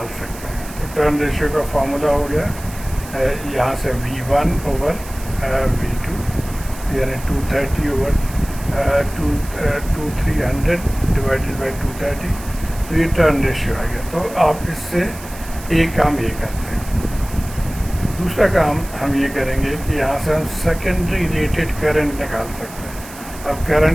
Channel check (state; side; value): noise; right; hiss, 16 dB below the sound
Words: सकते हैं, तो टर्न रेशियो का फार्मूला हो गया यहाँ से V1/V2, यानी 230 ओवर 2300 डिवाइडेड बाई 230, तो ये टर्न रेशियो आ गया। तो आप इससे एक काम ये करते हैं। दूसरा काम हम ये करेंगे कि यहाँ से हम सेकेंडरी रेटेड करंट निकाल सकते हैं। अब current